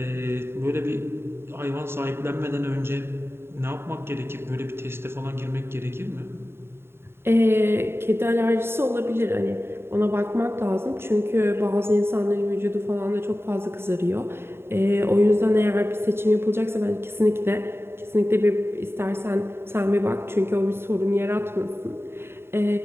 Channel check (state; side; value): late; left; 0.11 ms